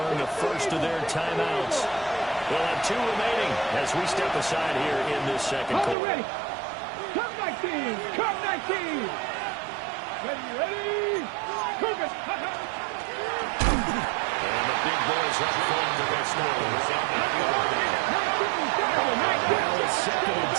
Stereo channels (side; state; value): left; drops out; at 6.0 s